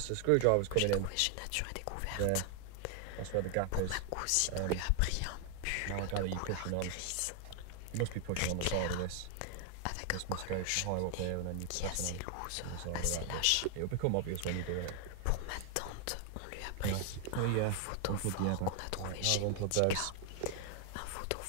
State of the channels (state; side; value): different; both; correlation 0.00